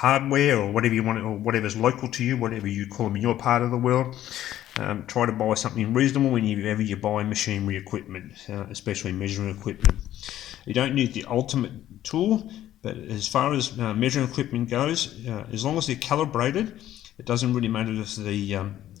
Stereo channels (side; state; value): right; quieter; 12.7 dB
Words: or whatever you want, or whatever's local to you, whatever you call them in your part of the world. try to buy something reasonable whenever you buy machinery equipment, especially measuring equipment. You don't need the ultimate tool, but as far as measuring equipment goes, as long as they're calibrated, it doesn't really matter if